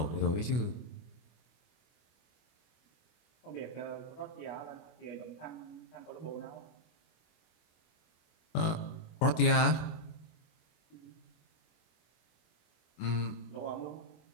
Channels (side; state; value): right; late; 25 ms